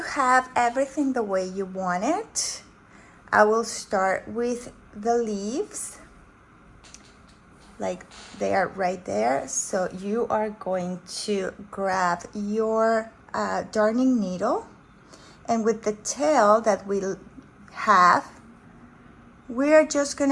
have everything the way you want it, I will start with the leaves, like they are right there. So you are going to grab your darning needle, and with the tail that we have, we're just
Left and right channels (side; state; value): both; identical; correlation 1.00